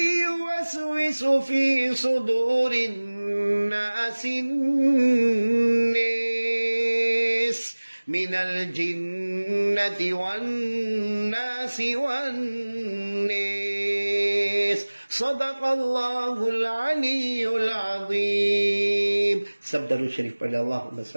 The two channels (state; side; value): inverted; both; correlation -1.00